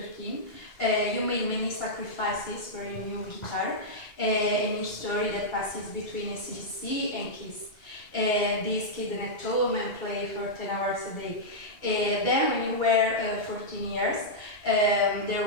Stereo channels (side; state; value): right; late; 2.3 ms